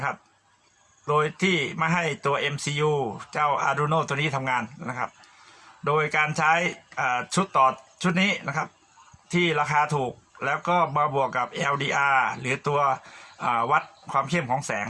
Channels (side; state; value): both; identical; correlation 1.00